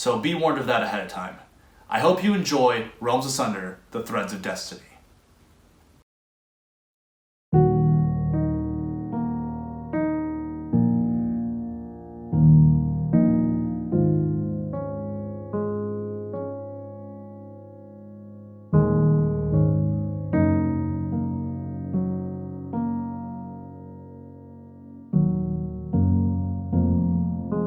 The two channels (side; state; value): both; identical; correlation 1.00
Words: be warned of that ahead of time. I hope you enjoy Realms Asunder, The Threads of Destiny.